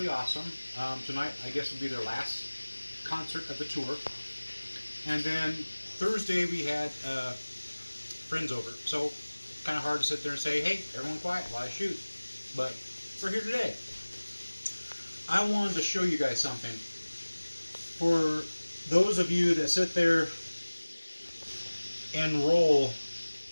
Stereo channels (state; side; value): inverted; both; correlation -1.00